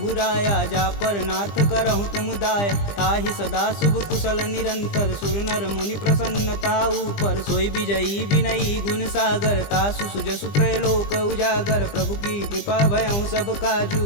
जा पर नाथ करहु तुम दाय। ताहि सदा शुभ कुशल निरंतर सुर नर मुनि प्रसन्नता ऊपर। सोई विजयी विनयी गुण सागर तासु सुजसु त्रैलोक उजागर। प्रभु की कृपा भयउ सब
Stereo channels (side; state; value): right; late; 20 ms